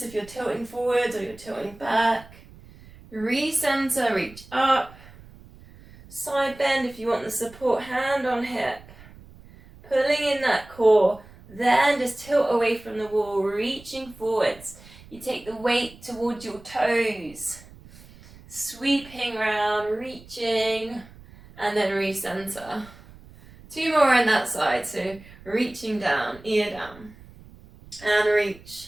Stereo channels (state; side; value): noise; right; rumble, 21 dB below the sound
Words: if you're tilting forwards or you're tilting back. Recenter, reach up. Side bend if you want the support, hand on hip. Pulling in that core, Then just tilt away from the wall, reaching forwards. You take the weight towards your toes, sweeping around, reaching, and then recenter. 2 more on that side, so reaching down, ear down, and